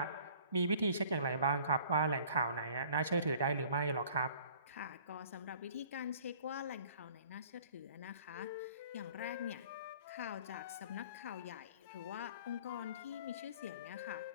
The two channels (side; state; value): both; inverted; correlation -0.52